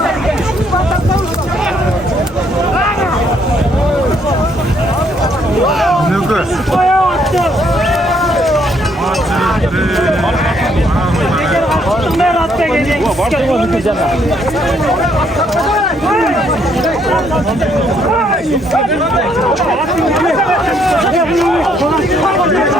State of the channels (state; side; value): normal; both; correlation 0.69